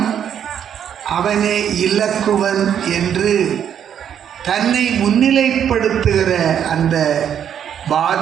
அவனே இலக்குவன் என்று தன்னை முன்னிலைப்படுத்துகிற அந்த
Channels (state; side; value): quieter; left; 9.0 dB